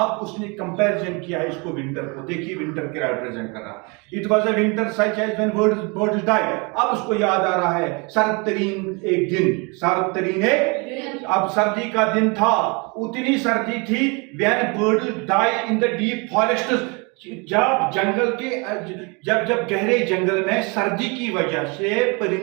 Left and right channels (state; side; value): quieter; left; 30.4 dB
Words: उसने कंपैरिजन किया है इसको विंटर को। देखिए विंटर क्या रिप्रेजेंट कर रहा है। It was a winter such as when birds died. अब उसको याद आ रहा है सर्द तरीन एक दिन, सर्द तरीन एक, अब सर्दी का दिन था, उतनी सर्दी थी when birds die in the deep forest, जब जंगल के जब गहरे जंगल में सर्दी की वजह से